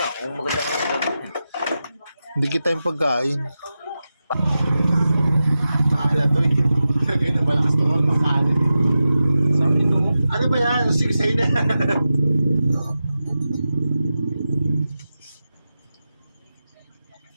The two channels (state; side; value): inverted; both; correlation -0.92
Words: Kung maganda nga Hindi kita yung pagkain. Mahala to eh. Kaya na malakas to ang makalit. Ano ba yan? Sigsay na.